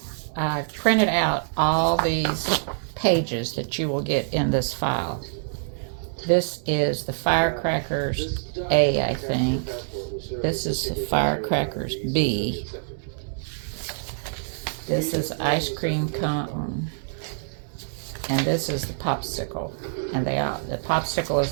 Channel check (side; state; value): left; silent; digital silence